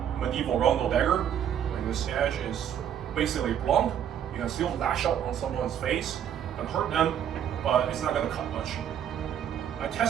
medieval rondel dagger, when this edge is basically blunt, you can still lash out on someone's face and hurt them, but it's not going to cut much. I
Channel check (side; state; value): left; quieter; 9.5 dB